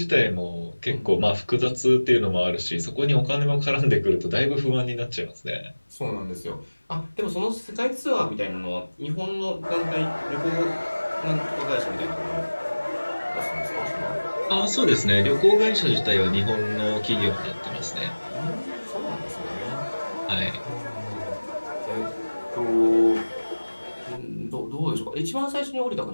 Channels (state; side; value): inverted; both; correlation -1.00